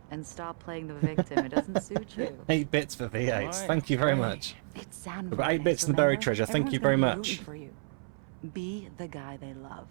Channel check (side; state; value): left; silent; 57 dB below the other